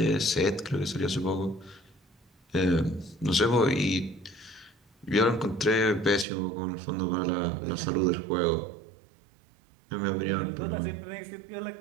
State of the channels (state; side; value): drops out; left; at 6.2 s